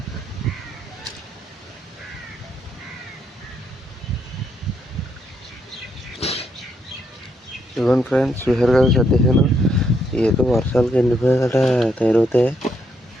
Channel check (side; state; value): both; normal; correlation 0.76